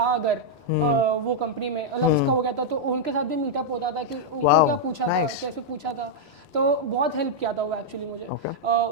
अगर वो कंपनी में मतलब उसका हो गया था तो उनके साथ भी मीटअप होता था कि उनको क्या पूछा था, कैसे पूछा था. तो बहुत हेल्प किया था वो एक्चुअली मुझे.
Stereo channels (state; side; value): normal; both; correlation -0.04